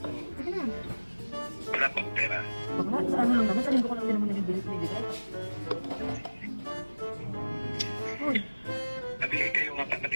Sige na. Wala pa akong pera. Bakla, sa ano lang naman, sa linggo ko lang din naman nabibigay. Uy. Nabigay kayo nga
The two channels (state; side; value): inverted; both; correlation -1.00